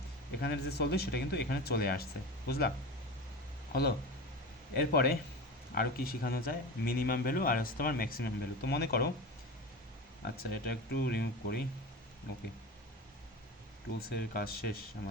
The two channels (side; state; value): both; normal; correlation 0.28